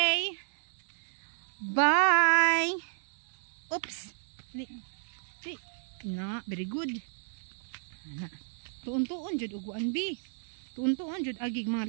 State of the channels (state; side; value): silent; left; digital silence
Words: Bye. Oops. Very good. Tuon-tuon jud uguan bi. Tuon-tuon jud agig